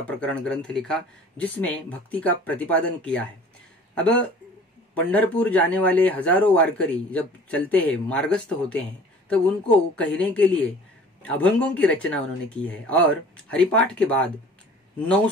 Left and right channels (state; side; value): normal; both; correlation 0.47